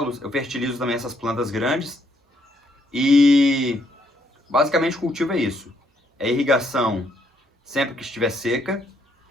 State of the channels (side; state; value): both; normal; correlation 0.72